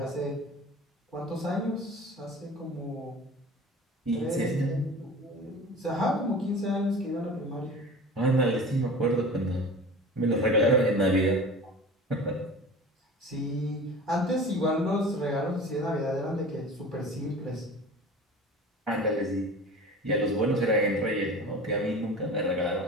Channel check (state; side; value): normal; both; correlation 0.38